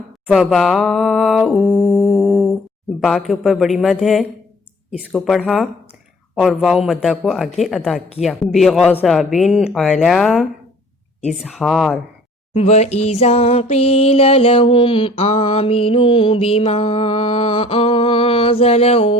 فباؤ با کے اوپر بڑی مد ہے اس کو پڑھا اور واو مدہ کو آگے ادا کیا، بغضب علی اظہار، وَإِذَا قِيلَ لَهُمْ آمِنُوا بِمَا أَنزَلَ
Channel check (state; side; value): normal; both; correlation 0.52